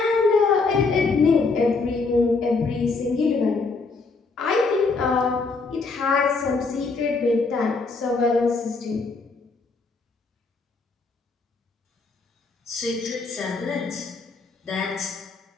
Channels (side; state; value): right; quieter; 4.1 dB